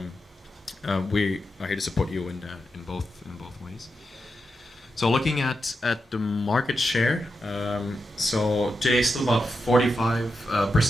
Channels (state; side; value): normal; both; correlation 0.87